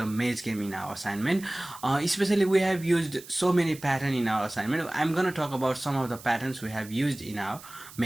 maze game in our assignment. Especially we have used so many patterns in our assignment. I'm going to talk about some of the patterns we have used in our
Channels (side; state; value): right; noise; hiss, 18 dB below the sound